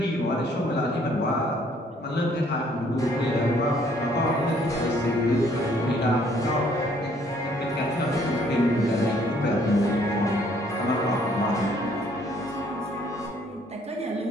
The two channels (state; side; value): normal; both; correlation 0.63